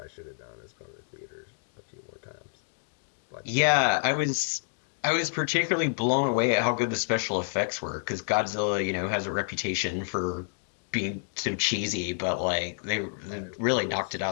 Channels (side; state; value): right; silent; digital silence